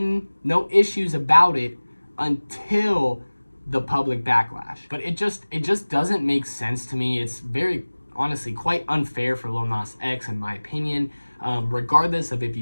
issues about it until the public backlash. But it just doesn't make sense to me. It's very, honestly, quite unfair for Lil Nas X, in my opinion. Regardless of if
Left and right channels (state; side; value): inverted; both; correlation -1.00